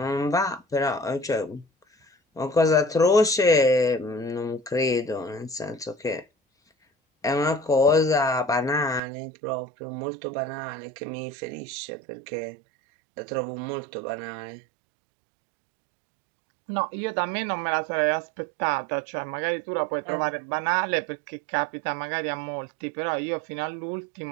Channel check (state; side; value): drops out; left; at 9.0 s